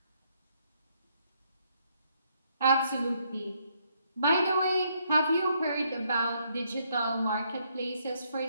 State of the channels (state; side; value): inverted; both; correlation -0.72